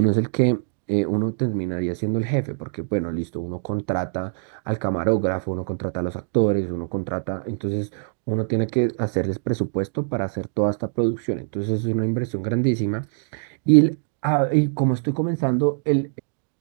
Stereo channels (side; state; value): left; silent; digital silence